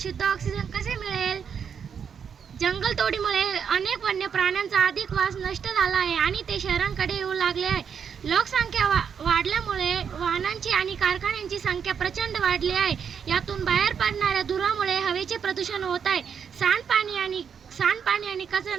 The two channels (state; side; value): quieter; left; 7.2 dB